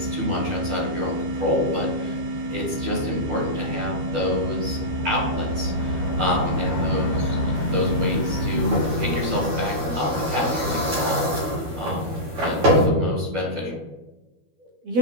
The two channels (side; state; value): left; late; 12 ms